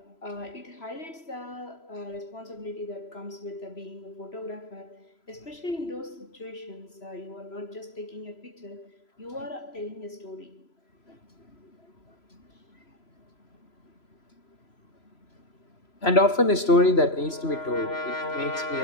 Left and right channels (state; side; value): late; right; 3.0 ms